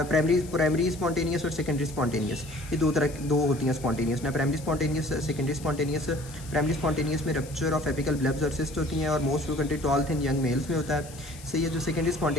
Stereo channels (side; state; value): left; noise; hiss, 18 dB below the sound